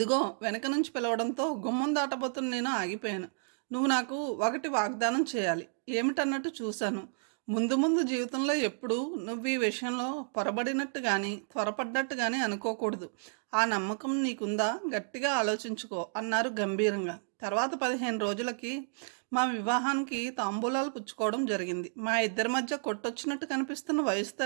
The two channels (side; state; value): left; silent; digital silence